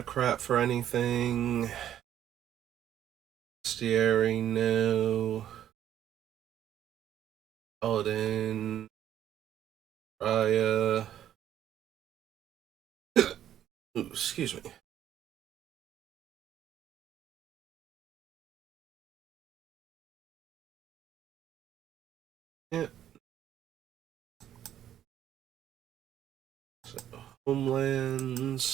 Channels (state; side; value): quieter; left; 11.0 dB